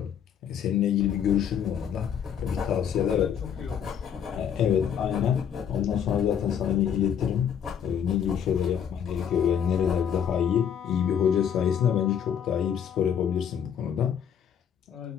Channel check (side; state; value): right; quieter; 8.4 dB